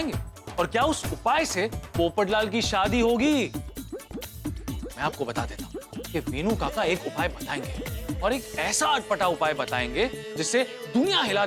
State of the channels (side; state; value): both; identical; correlation 1.00